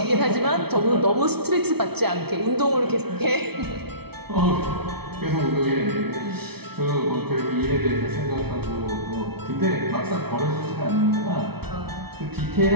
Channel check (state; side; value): late; left; 0.97 ms